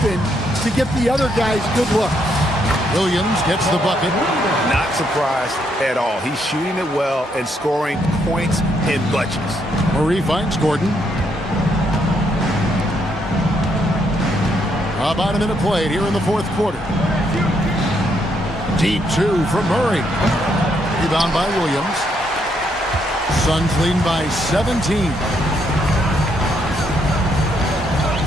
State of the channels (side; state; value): both; normal; correlation 0.74